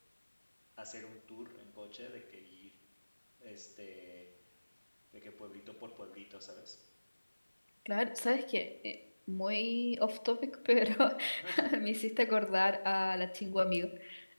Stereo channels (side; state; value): both; inverted; correlation -1.00